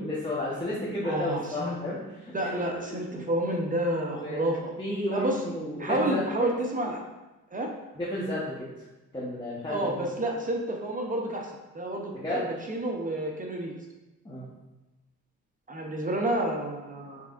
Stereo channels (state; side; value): normal; both; correlation 0.31